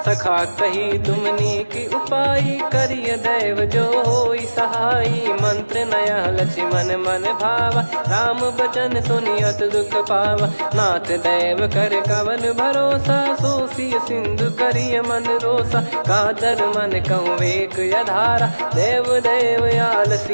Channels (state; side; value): inverted; both; correlation -1.00